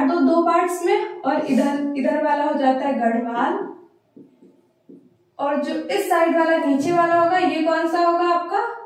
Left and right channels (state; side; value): identical; both; correlation 1.00